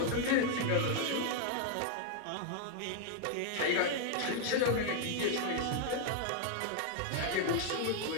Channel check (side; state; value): both; different; correlation 0.00